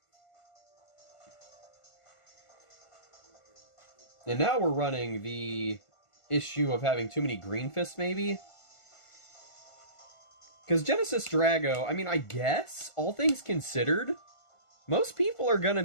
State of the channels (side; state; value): right; late; 1.5 ms